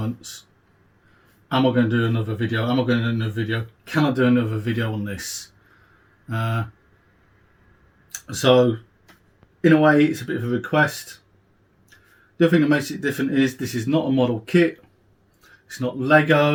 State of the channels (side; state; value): both; identical; correlation 1.00